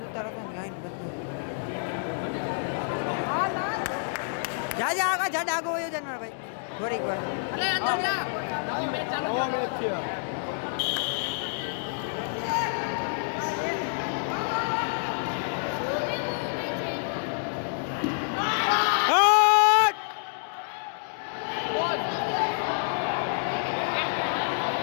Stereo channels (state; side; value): silent; right; digital silence